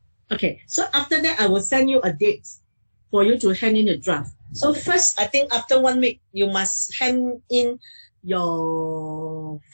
Okay, so after that, I will send you a date for you to hand in the draft. So first, I think after 1 week, you must hand in your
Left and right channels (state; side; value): inverted; both; correlation -1.00